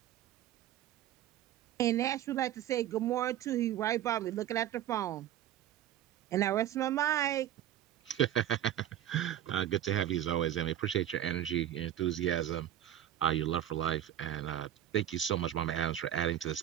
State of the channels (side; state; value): left; quieter; 11.8 dB